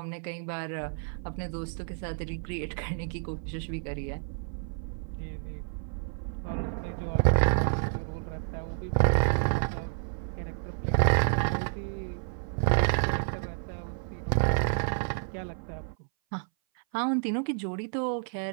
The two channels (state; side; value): silent; left; 58 dB below the other